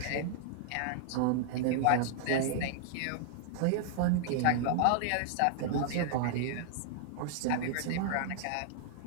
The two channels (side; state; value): both; different; correlation -0.01